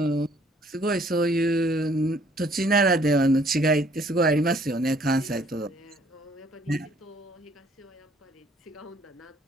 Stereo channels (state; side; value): normal; both; correlation 0.61